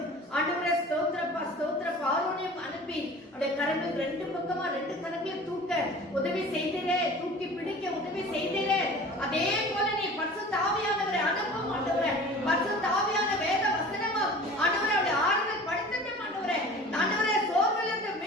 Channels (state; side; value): normal; both; correlation 0.42